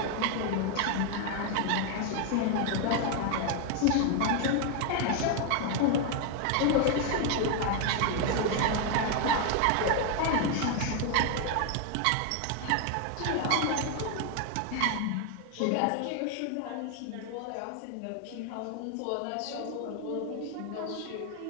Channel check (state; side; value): different; both; correlation 0.01